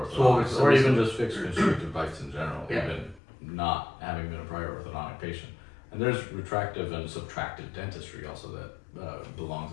or even just fixed constrictive bites in general, Yeah. even not having been a prior orthodontic patient. And there's retractive and subtractive dentistry also that belongs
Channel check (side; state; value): right; drops out; at 3.2 s